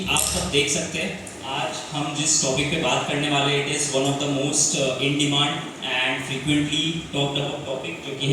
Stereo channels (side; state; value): both; identical; correlation 1.00